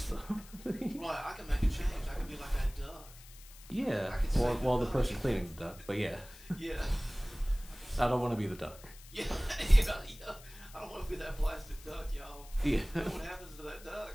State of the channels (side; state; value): left; noise; hiss, 20 dB below the sound